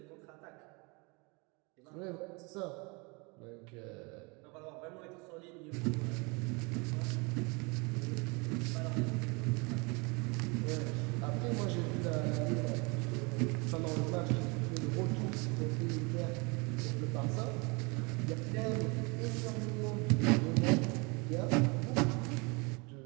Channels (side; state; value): left; quieter; 29.1 dB